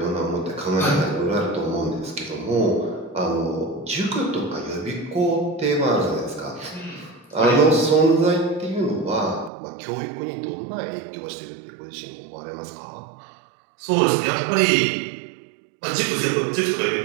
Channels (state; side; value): drops out; left; at 9.5 s